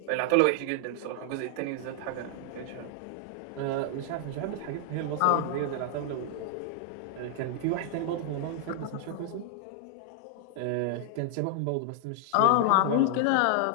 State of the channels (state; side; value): different; both; correlation 0.00